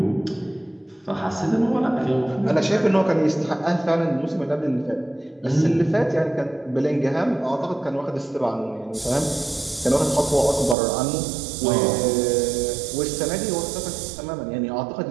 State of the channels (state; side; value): drops out; left; at 10.8 s